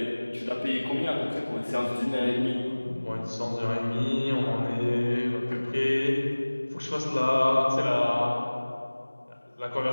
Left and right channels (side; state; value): both; inverted; correlation -1.00